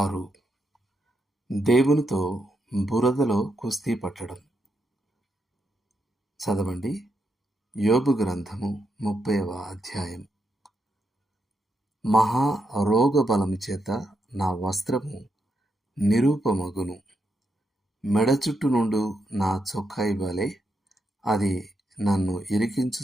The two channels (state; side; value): normal; both; correlation 0.82